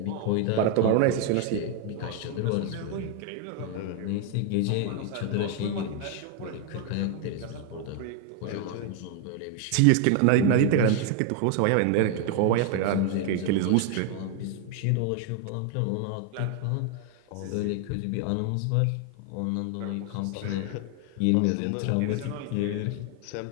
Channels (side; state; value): both; different; correlation 0.01